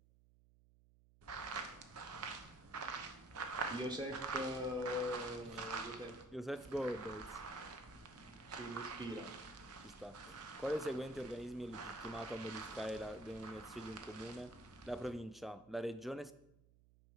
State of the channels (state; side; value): noise; right; hum, 26 dB below the sound